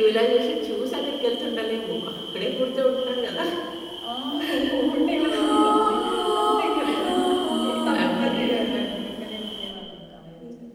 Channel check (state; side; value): identical; both; correlation 1.00